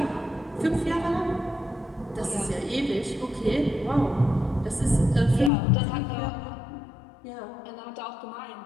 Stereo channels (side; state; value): right; drops out; at 5.5 s